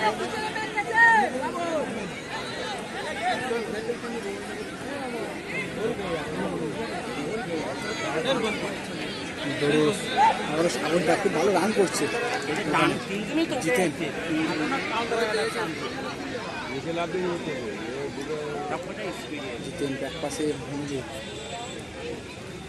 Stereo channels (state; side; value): identical; both; correlation 1.00